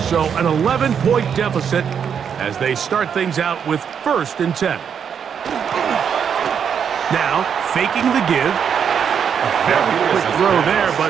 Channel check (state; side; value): quieter; left; 7.5 dB